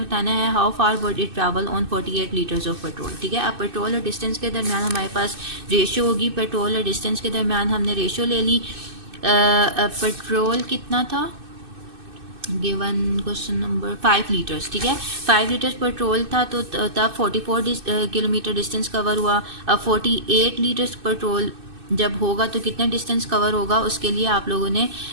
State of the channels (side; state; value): left; late; 2.6 ms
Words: बताना है how far would it travel on 48 litres of petrol. ठीक है, अब पेट्रोल और डिस्टेंस के दरमियान हमारे पास रेशियो होगी। पेट्रोल और डिस्टेंस के दरमियान हमने रेशियो ले ली। पेट्रोल कितना था गिवन क्वेश्चन नंबर 5 लीटर्स। ठीक है, 5 लीटर्स पेट्रोल था तो तब 44 किलोमीटर डिस्टेंस कवर हुआ। अब 48 लीटर्स पेट्रोल जब होगा तो कितना डिस्टेंस कवर होगा, उसके लिए आप लोगों ने